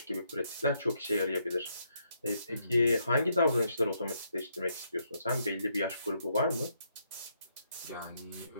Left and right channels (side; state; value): both; inverted; correlation -0.75